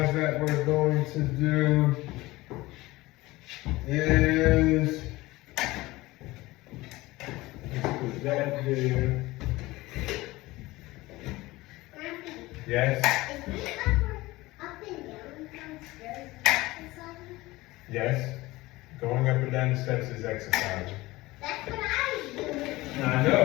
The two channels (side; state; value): right; quieter; 19.7 dB